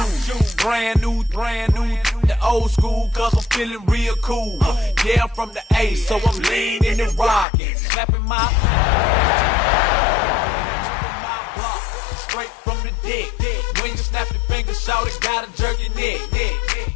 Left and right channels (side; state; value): right; drops out; at 7.5 s